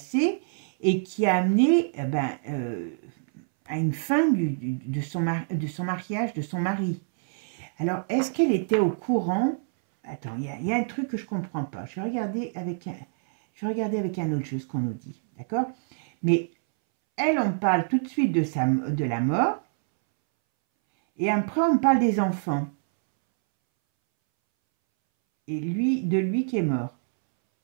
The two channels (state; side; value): silent; left; 61 dB below the other